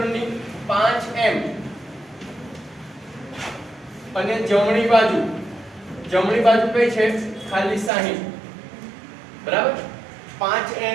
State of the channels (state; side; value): drops out; left; at 7.9 s